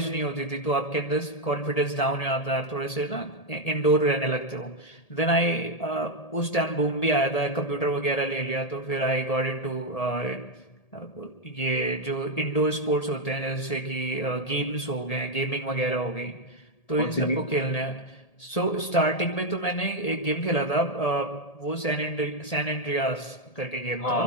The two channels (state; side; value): late; right; 1.8 ms